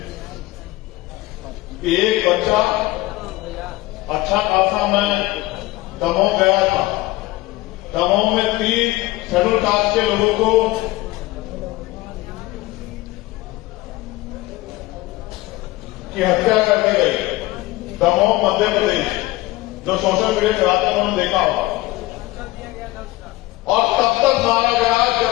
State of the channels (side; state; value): right; quieter; 19.1 dB